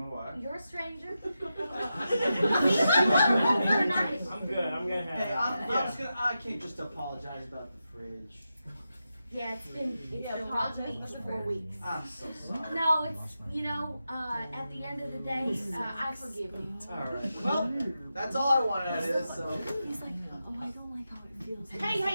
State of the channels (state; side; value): inverted; both; correlation -0.89